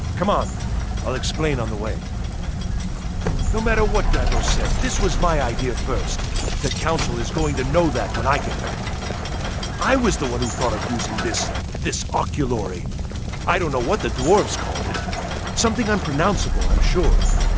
Come on, I'll explain on the way. No matter what Gavros said, this was my idea first. The Council is going to know that when I get back. I was the one who thought of using this oculory. I don't know what the dwarves called it. Something unpronounceable, I'm sure.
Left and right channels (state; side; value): identical; both; correlation 1.00